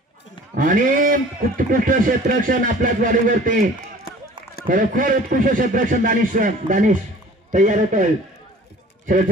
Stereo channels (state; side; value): normal; both; correlation 0.47